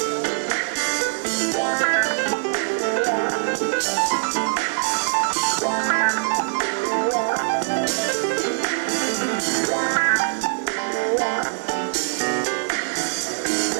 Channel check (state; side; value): silent; left; 64 dB below the other